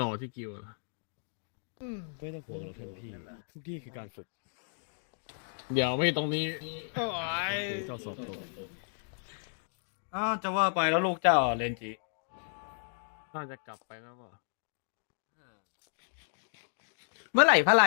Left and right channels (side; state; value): right; silent; digital silence